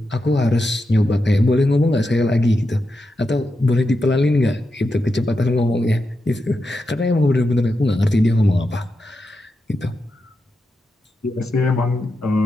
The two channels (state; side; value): normal; both; correlation 0.87